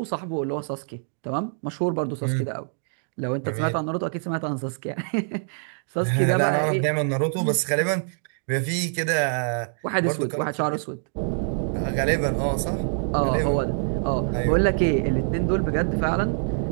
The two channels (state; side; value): silent; left; digital silence